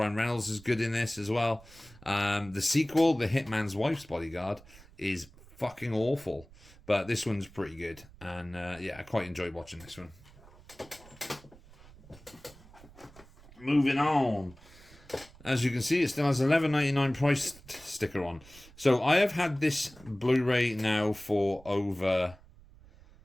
Reynolds is good in this as well. The sequel, The Hitman's Wife's Bodyguard, is fucking awful. But this one's pretty good. And yeah, I quite enjoyed watching this one. Moving on. As you can see, it still has $11.99 price sticker on. So I have had this Blu-ray now for over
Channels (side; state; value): right; noise; rumble, 23 dB below the sound